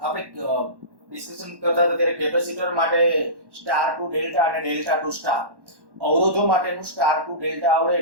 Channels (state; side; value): late; left; 1.1 ms